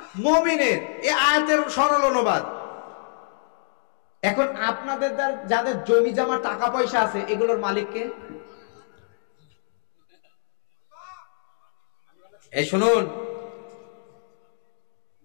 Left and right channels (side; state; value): right; silent; digital silence